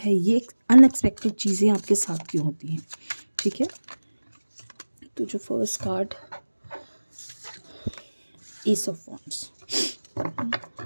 ये अनएक्सपेक्टेड चीज़ें आपके साथ क्यों होती हैं। ठीक है, तो जो first card, ace of wands.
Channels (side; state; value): both; inverted; correlation -1.00